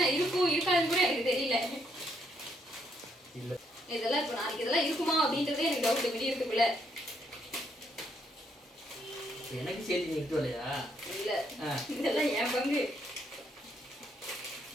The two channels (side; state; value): both; normal; correlation 0.74